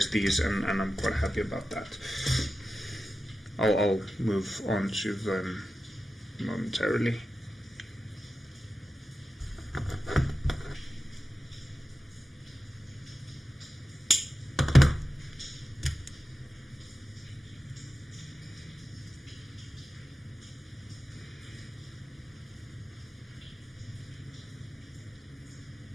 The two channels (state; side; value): normal; both; correlation 0.93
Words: these, and I'm quite happy about that. I'll move on to them momentarily.